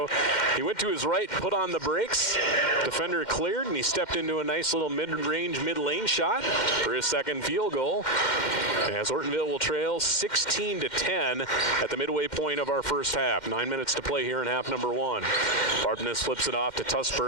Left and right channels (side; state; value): right; late; 2.1 ms